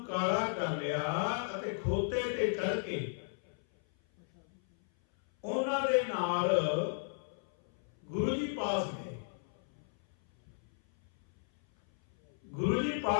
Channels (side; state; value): right; silent; 55 dB below the other